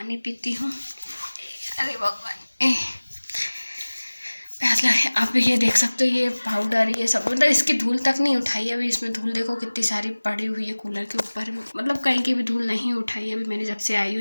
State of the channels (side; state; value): both; inverted; correlation -1.00